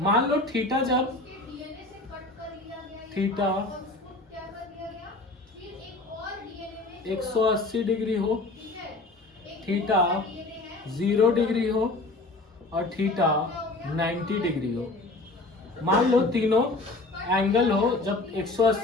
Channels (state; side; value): quieter; right; 3.0 dB